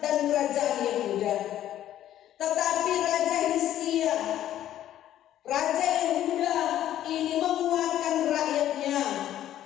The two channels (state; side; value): quieter; right; 12.1 dB